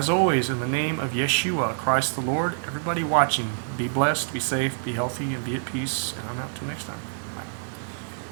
always, in the name of Yeshua, Christ the Lord, everybody watching, be blessed, be safe, be healthy, and be at peace. And I'm out till next time.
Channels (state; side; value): silent; left; digital silence